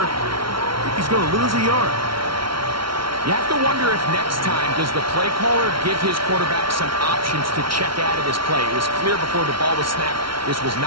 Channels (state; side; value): late; left; 0.74 ms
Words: I think he's going to lose a yard. You have to wonder if next time, does the play caller give his quarterback some options to check out of this play? It was clear before the ball was snapped. This was